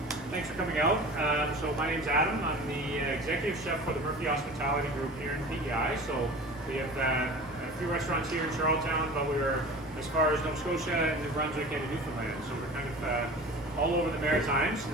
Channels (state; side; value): normal; both; correlation 0.38